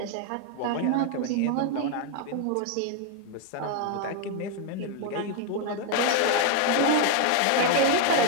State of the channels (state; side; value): different; both; correlation 0.01